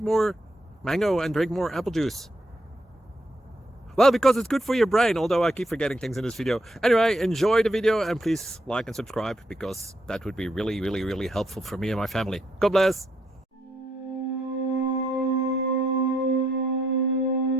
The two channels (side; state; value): both; normal; correlation 0.76